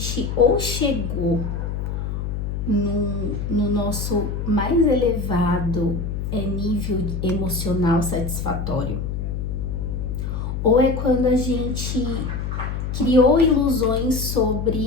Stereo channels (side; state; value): left; noise; hum, 3 dB below the sound